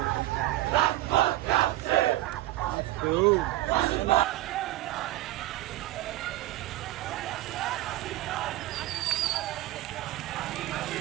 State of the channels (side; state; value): left; quieter; 16.0 dB